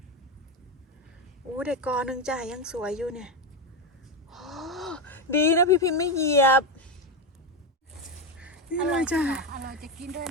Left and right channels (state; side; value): normal; both; correlation 0.11